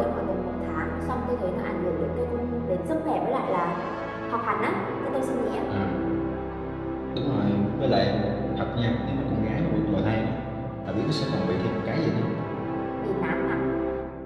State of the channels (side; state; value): both; identical; correlation 1.00